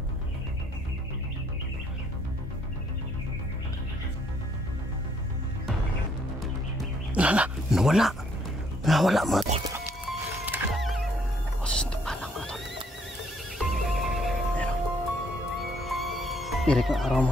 Nawala mga tol. Boses ng tikbalang mga tol. Ayan o. Irik ang araw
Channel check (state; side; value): normal; both; correlation 0.67